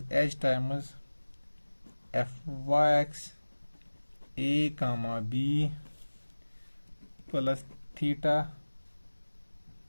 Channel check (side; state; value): both; inverted; correlation -1.00